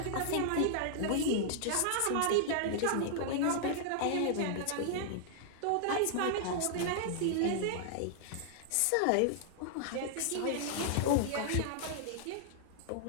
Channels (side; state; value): both; different; correlation -0.01